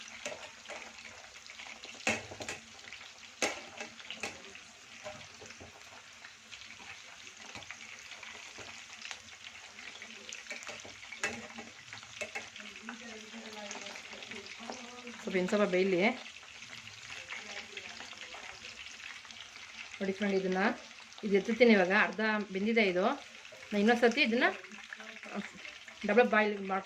ಸ್ವಲ್ಪ ಬೇಯಲಿ ನೋಡಿ ಫ್ರೆಂಡ್. ಇದು ಎತ್ತುತ್ತೀನಿ ಇವಾಗ. ಅರ್ಧ ಬೆಂದಿದೆ ಇದು. ನಾನು ಇನ್ನೊಂದು ಸರ್ತಿ ಇದನ್ನು ಡಬಲ್ ಬಾಯ್ಲ್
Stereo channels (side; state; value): both; identical; correlation 1.00